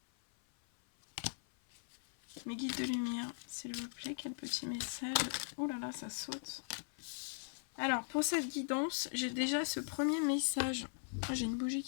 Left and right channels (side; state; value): right; silent; 51 dB below the other